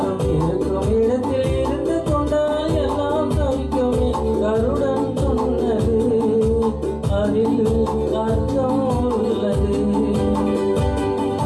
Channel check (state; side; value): identical; both; correlation 1.00